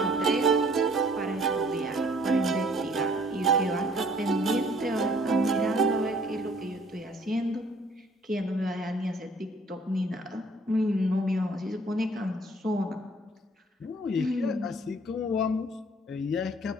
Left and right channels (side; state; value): both; normal; correlation 0.57